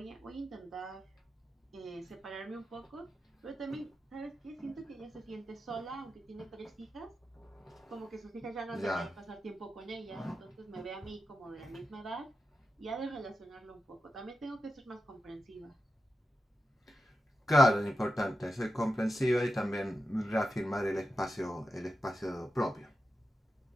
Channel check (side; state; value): both; normal; correlation 0.90